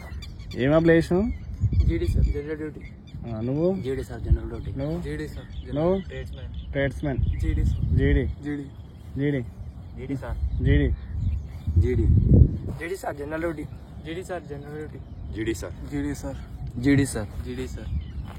ఏం అప్లై చేసినావు? నువ్వు నువ్వు ట్రేడ్స్మెన్ జీడీ జీడీ జీడీ జీడీ జీడీ సార్ జనరల్ డ్యూటీ జీడీ సార్ జనరల్ డ్యూటీ జీడీ సార్ జీడీ సార్ జీడీ సార్ జీడీ సార్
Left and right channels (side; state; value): both; identical; correlation 1.00